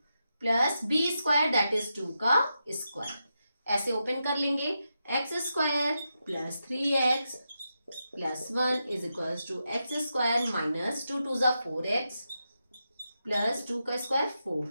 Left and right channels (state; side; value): inverted; both; correlation -0.87